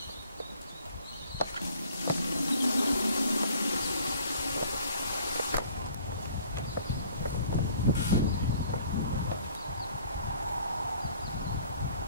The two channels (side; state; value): both; inverted; correlation -0.55